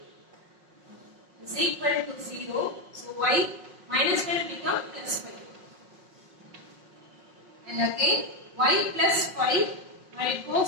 is equal to 0. So y minus 5 becomes plus 5. And again y plus 5, when it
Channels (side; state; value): left; late; 5.5 ms